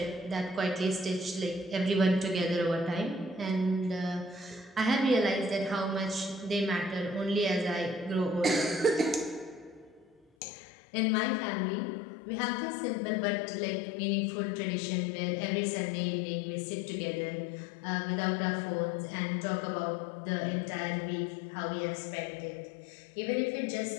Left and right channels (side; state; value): right; drops out; at 10.2 s